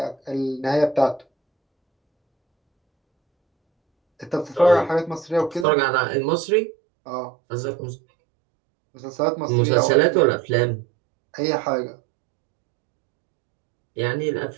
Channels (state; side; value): drops out; left; at 5.7 s